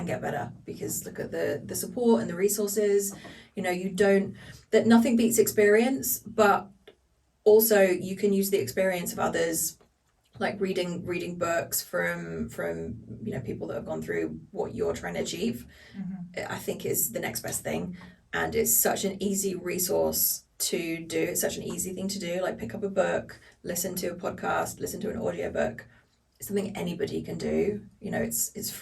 get better, because look at the support and the resources. That nothing beats experience, but also you can use the experience of others, like reading books from people that have gone through what you're trying to achieve. I think is the next best thing, and it's such an easy resource to do. It's such an easy thing to do, like pick up a book, listen to a podcast, listen to an audiobook. It's something anybody can do. It's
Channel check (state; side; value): identical; both; correlation 1.00